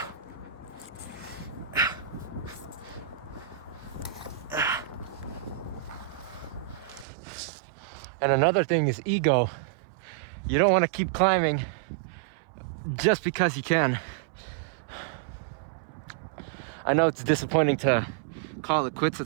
And another thing is ego. You don't want to keep climbing just because you can. I know it's disappointing to call it quits at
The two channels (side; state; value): left; drops out; at 7.1 s